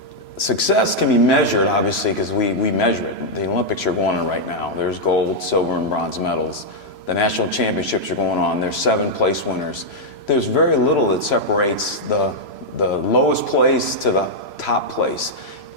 Success can be measured, obviously, because we measure it. The Olympics are going on right now. There's gold, silver, and bronze medals. The national championships are going on. There's 7 place winners. There's very little that separates the lowest place to the top place.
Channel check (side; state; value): right; late; 3.0 ms